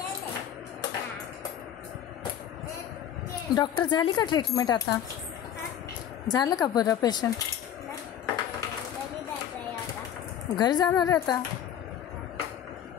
डॉक्टर, झाली का ट्रीटमेंट आता? झालं का बरं पेशंट? घरी जाणार आहे आता?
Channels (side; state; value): right; quieter; 9.8 dB